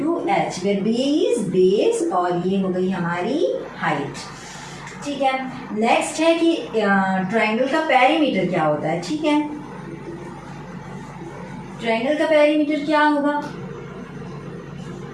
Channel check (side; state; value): both; identical; correlation 1.00